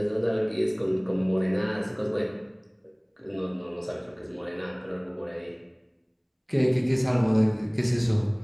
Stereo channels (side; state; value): both; identical; correlation 1.00